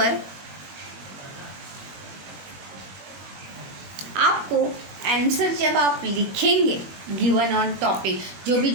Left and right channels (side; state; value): left; late; 22 ms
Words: आपको आंसर जब आप लिखेंगे गिवन ऑन टॉपिक, जो